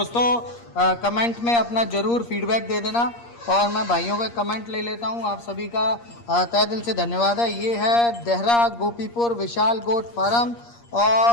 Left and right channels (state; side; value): late; right; 8.5 ms